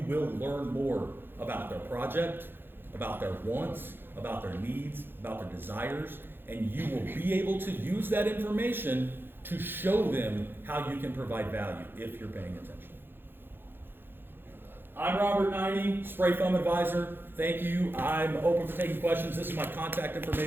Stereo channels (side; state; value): left; late; 0.10 ms